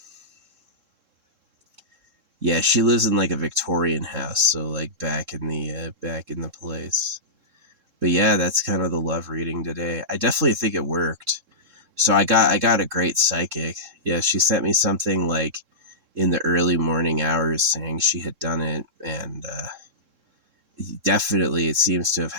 yeah, she lives in like a Victorian house, so like back in the place. But yeah, that's kind of the love reading today. I definitely think it worked. So I got a great psychic. Yeah, she sent me something like in the early morning hours saying she had done it, and definitely it seems to have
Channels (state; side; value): late; left; 3.7 ms